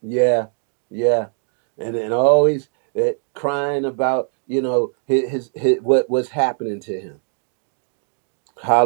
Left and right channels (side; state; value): left; silent; 65 dB below the other